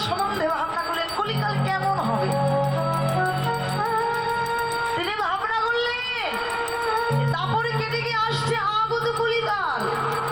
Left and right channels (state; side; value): noise; right; rumble, 19 dB below the sound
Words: সম্বন্ধে ভাবনা করলেন, কলিকাল কেমন হবে। তিনি ভাবনা করলেন দাপর কেটে গিয়ে আসছে আগত কলিকাল।